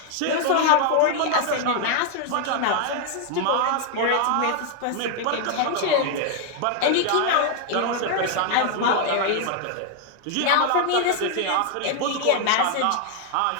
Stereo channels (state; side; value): different; both; correlation 0.00